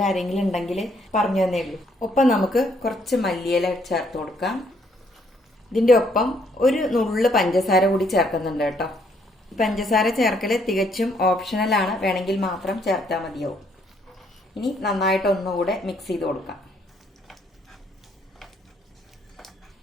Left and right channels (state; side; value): normal; both; correlation 0.69